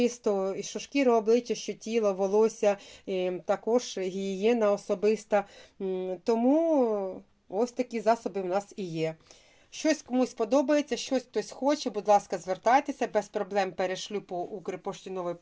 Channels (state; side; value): identical; both; correlation 1.00